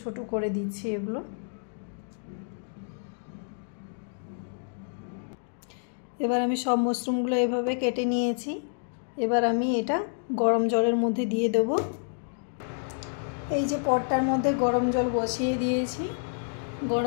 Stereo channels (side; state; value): right; silent; digital silence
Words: ছোট করে দিচ্ছি এগুলো। এবার আমি সব মাশরুমগুলো এভাবে কেটে নিয়েছি। এবার আমি এটা গরম জলের মধ্যে দিয়ে দেব। এই যে পটটার মধ্যে গরম জল বসিয়ে দিয়েছি।